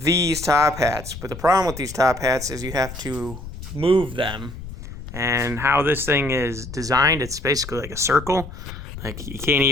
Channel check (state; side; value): noise; left; rumble, 12 dB below the sound